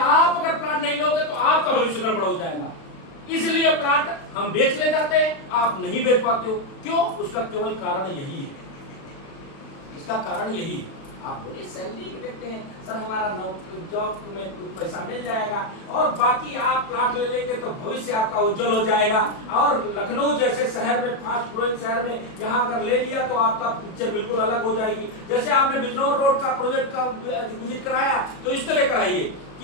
अगर प्लॉट नहीं लोगे तो आपका भविष्य गड़बड़ हो जाएगा। इसलिए प्लॉट हम बेच ले जाते हैं, आप नहीं बेच पाते हो, क्यों? उसका केवल कारण यही है, इसका कारण यही है। आप बोले सैलरी देखते हैं सर हमारा जॉब में पैसा मिल जाएगा और बाकी आप प्लॉट ले लेंगे तो भविष्य आपका उज्जवल हो जाएगा, और लखनऊ जैसे शहर में, फास्ट ग्रोइंग शहर में यहाँ अगर ले लिया तो आपका पिक्चर बिल्कुल अलग हो जाएगी। जैसे आपने बिजनौर रोड का प्रोजेक्ट का विजिट कराया तो इस तरह कराइए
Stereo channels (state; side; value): late; right; 36 ms